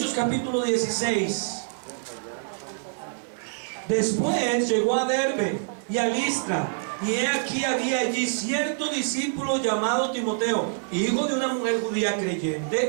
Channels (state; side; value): silent; left; digital silence